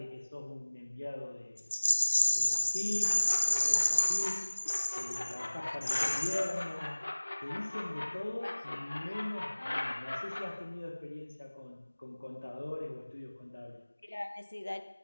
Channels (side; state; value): both; inverted; correlation -1.00